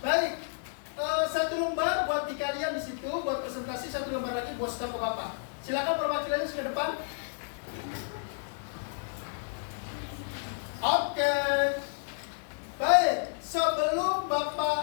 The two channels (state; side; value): silent; right; digital silence